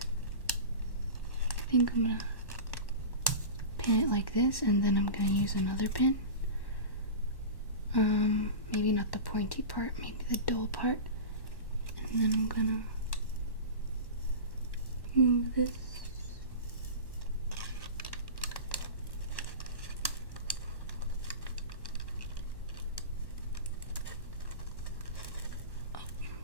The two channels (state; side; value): late; right; 1.1 ms